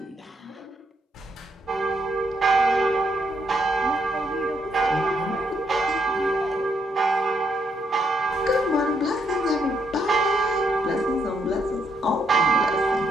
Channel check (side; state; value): both; normal; correlation 0.77